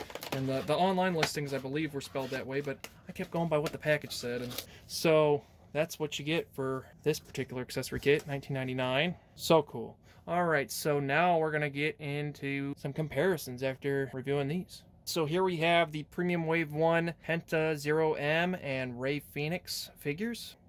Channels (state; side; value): identical; both; correlation 1.00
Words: and the online listings I believe were spelled that way, but I kept going by what the package said. And so that's what you get for this particular accessory kit, $19.99. So cool. All right, so now we're gonna get into some comparisons after reviewing these. So here we have the Premium Wave 1 Penta 0M and Rey Fénix figures.